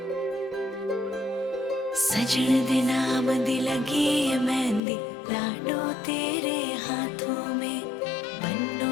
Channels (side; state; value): right; drops out; at 4.8 s